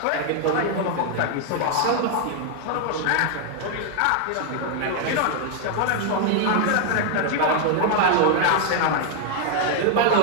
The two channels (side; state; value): both; different; correlation 0.00